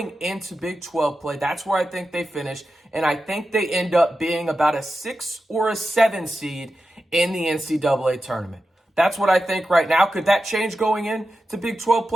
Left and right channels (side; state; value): both; normal; correlation 0.91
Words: into Big 12 play, that's where I think they finish, and I think they end up being about a 6 or a 7 seed in the NCAA tournament. That's what I think right now. Could that change going into Big 12